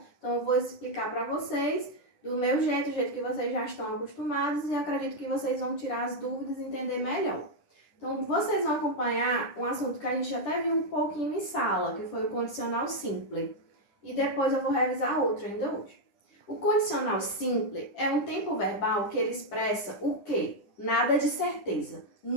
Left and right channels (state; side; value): late; right; 9.9 ms